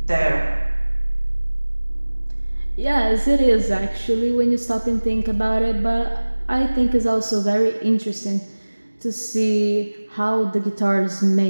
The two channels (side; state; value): both; inverted; correlation -1.00